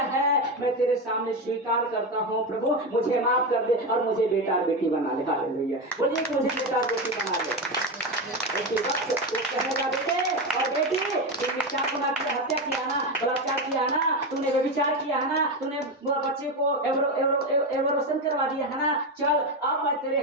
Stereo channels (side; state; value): both; normal; correlation 0.15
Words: है, मैं तेरे सामने स्वीकार करता हूँ, प्रभु मुझे माफ कर दे और मुझे बेटा और बेटी बना ले। हालेलुया। बोलिए कि मुझे बेटा और बेटी बना ले। उसी वक्त वो कहेगा, बेटे और बेटी, तुमने क्या गुनाह किया? हत्या किया ना, बलात्कार किया ना, तूने व्यभिचार किया है ना, तूने बच्चे को एवरोशन करवा दिया है ना, चल अब मैं तेरे